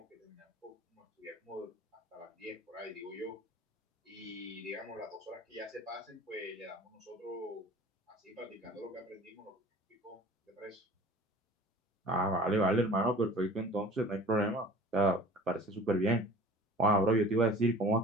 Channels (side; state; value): both; normal; correlation 0.44